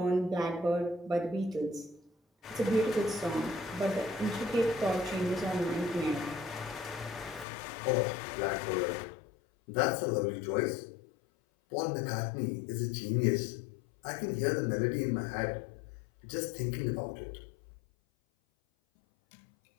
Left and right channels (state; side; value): drops out; right; at 7.5 s